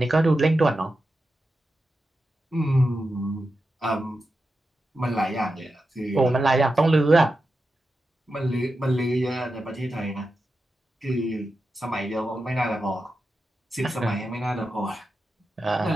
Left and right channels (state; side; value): normal; both; correlation 0.90